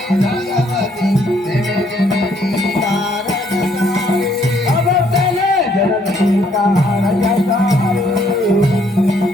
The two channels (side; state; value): both; normal; correlation 0.67